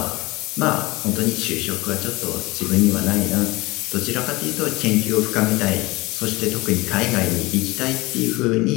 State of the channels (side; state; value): right; quieter; 21.9 dB